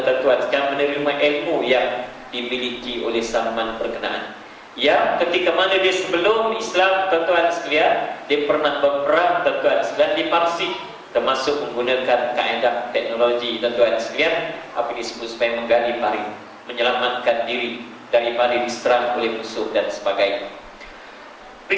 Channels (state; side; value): identical; both; correlation 1.00